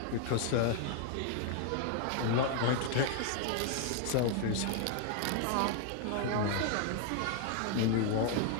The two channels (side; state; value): both; different; correlation 0.00